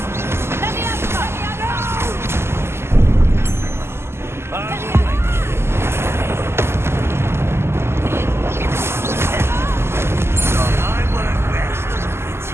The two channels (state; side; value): late; left; 0.12 ms